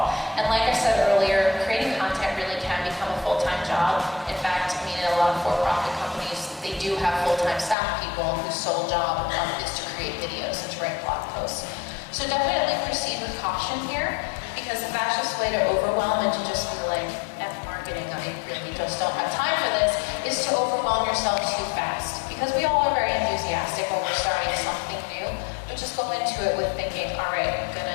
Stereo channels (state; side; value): drops out; right; at 7.8 s